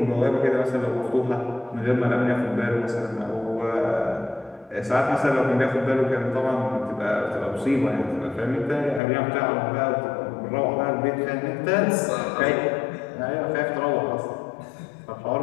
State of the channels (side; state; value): right; drops out; at 9.0 s